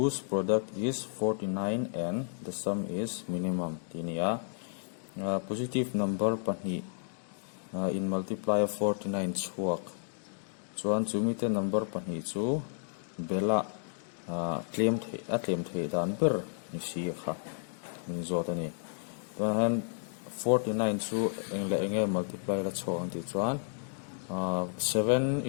product is 49 and the sum is minimum. Tinia positive number pani in multiplier 49 chuak. Chuan chumite number pani chu bela claim the dan ber ni si kha min zotani. Tuan 49 chu enge multiply la chawang ti chuan 7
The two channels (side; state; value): right; silent; digital silence